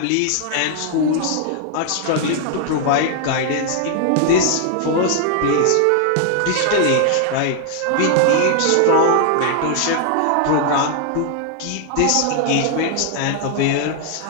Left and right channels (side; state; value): both; different; correlation 0.00